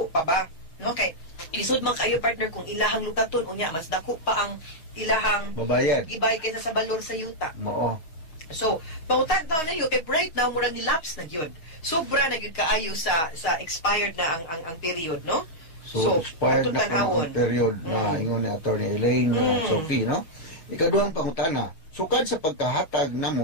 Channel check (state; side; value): late; right; 6.3 ms